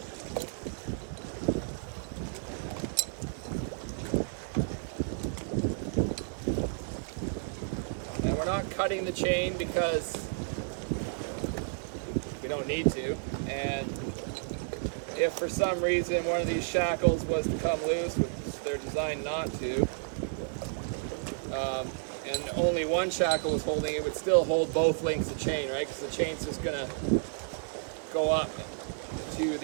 And we're not cutting the chain because we don't need to, and if for some reason one of these shackles was to come loose, which they're designed not to, and only one shackle was holding, it would still hold both lengths of chain, right? Because the chain's just gonna go up to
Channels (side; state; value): left; silent; 57 dB below the other